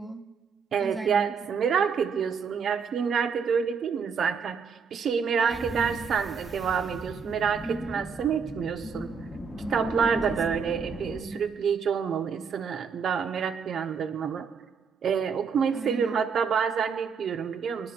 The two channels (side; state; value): left; quieter; 6.1 dB